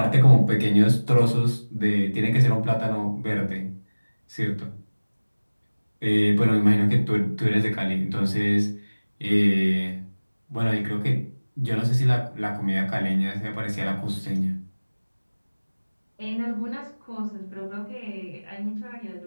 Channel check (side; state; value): both; inverted; correlation -1.00